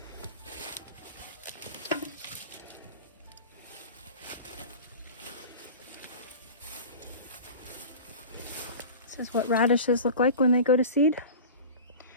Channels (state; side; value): inverted; both; correlation -0.35